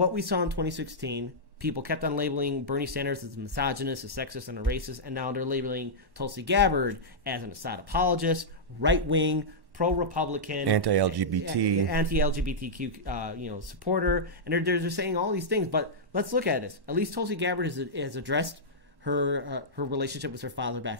we saw in 2016. People kept on labeling Bernie Sanders as a misogynist, a sexist, and a racist, and now they're labeling Tulsi Gabbard as an Assad apologist, right-wing, pro-Republican, anti-LGBTQ, supporter, and they're just saying all these things. But let's look at this. At least Tulsi Gabbard has addressed her relationship with her father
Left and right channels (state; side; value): late; left; 1.1 ms